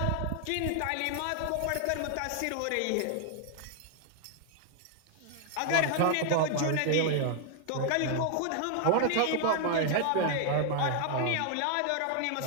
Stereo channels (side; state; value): both; different; correlation 0.00